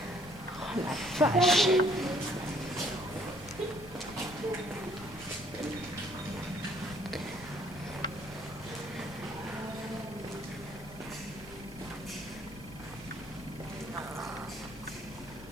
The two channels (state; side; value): noise; left; rumble, 17 dB below the sound